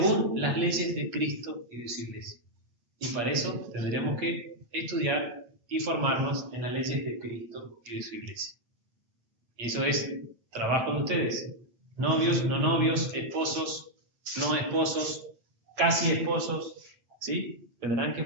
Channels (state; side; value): late; left; 8.4 ms